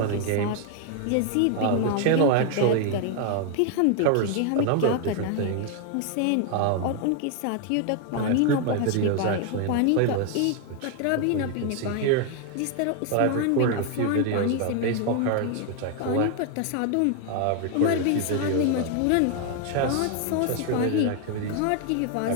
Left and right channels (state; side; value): different; both; correlation 0.00